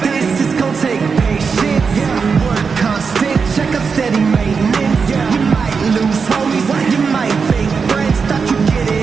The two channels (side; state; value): left; quieter; 5.4 dB